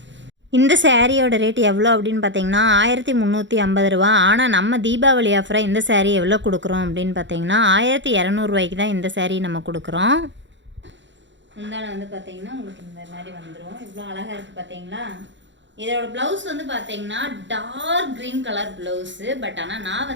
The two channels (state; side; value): late; left; 0.53 ms